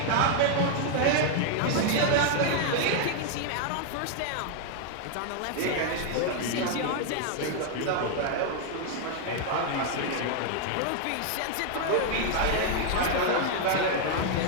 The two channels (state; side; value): different; both; correlation 0.00